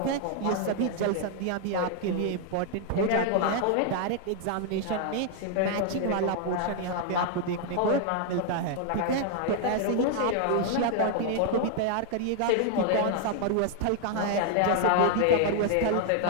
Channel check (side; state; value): both; different; correlation 0.00